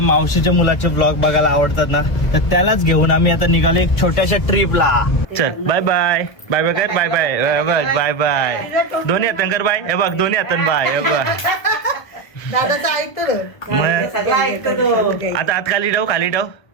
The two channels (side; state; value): right; late; 1.1 ms